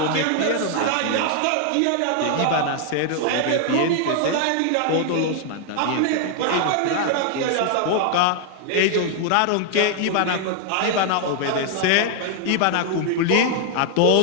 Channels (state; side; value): different; both; correlation 0.00